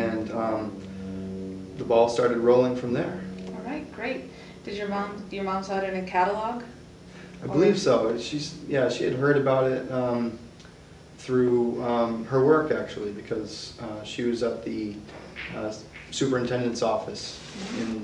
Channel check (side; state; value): both; identical; correlation 1.00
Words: the ball started rolling from there. All right, great. Did your mom saw it in a catalog? I believe so. She had heard about it through her work, actually, because she was at the superintendent's office